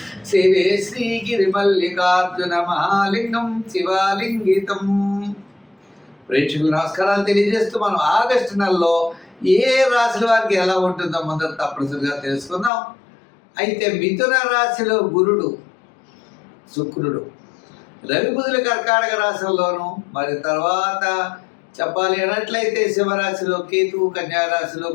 సేవే శ్రీగిరిమల్లికార్జున మహాలింగం శివాలింగితం. ప్రేక్షకులు నమస్కారాలు తెలియజేస్తూ మనం ఆగస్టు నెలలో ఏ రాశుల వారికి ఎలా ఉంటుందో మొదట తప్పనిసరిగా తెలుసుకుందాం. అయితే మిథున రాశిలో గురుడు, శుక్రుడు, రవి బుధుల కర్కాటక రాశుల్లోనూ, మరి తర్వాత చెప్పాలి అన్నట్లయితే సింహరాశిలో కేతువు, కన్యారాశిలో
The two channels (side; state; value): right; drops out; at 12.7 s